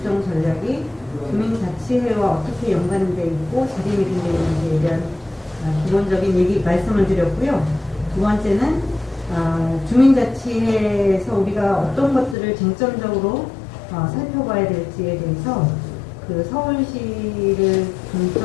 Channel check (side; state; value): right; drops out; at 12.4 s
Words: 국정전략이 주민자치회와 어떻게 연관되어 있고 자리매김되어 있는지에 대한 기본적인 얘기 말씀을 드렸고요. 두 번째는 주민자치회에서 우리가 어떤 것들을 쟁점적으로 살펴봐야 될지에 대해서 서울시를